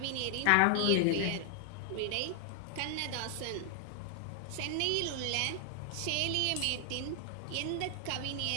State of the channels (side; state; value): both; different; correlation 0.00